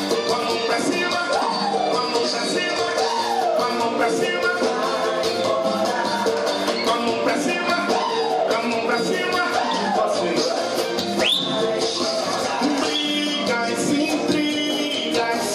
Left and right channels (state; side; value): identical; both; correlation 1.00